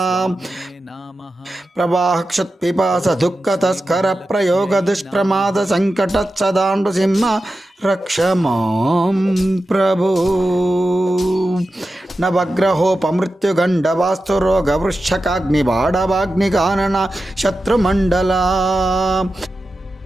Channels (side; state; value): both; normal; correlation 0.92